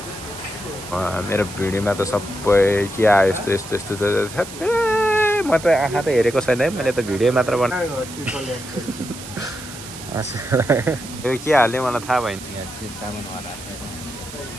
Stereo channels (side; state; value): right; noise; hiss, 13 dB below the sound